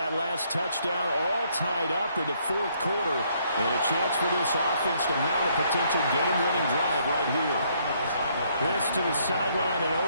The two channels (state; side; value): inverted; both; correlation -0.69